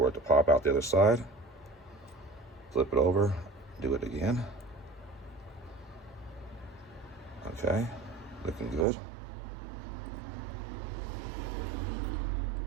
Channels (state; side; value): drops out; left; at 8.8 s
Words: it to pop out the other side. Flip it over. Do it again. Okay. Looking good.